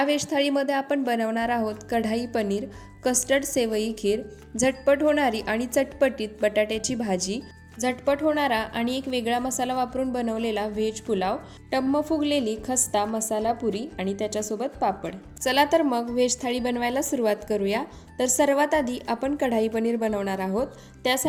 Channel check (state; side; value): identical; both; correlation 1.00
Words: व्हेज थाळीमध्ये आपण बनवणार आहोत कढाई पनीर, कस्टर्ड सेवई खीर, झटपट होणारी आणि चटपटीत बटाट्याची भाजी, झटपट होणारा आणि एक वेगळा मसाला वापरून बनवलेला व्हेज पुलाव, टम्म फुगलेली खस्ता मसाला पुरी आणि त्याच्यासोबत पापड। चला तर मग व्हेज थाळी बनवायला सुरुवात करूया। तर सर्वात आधी आपण कढाई पनीर बनवणार आहोत।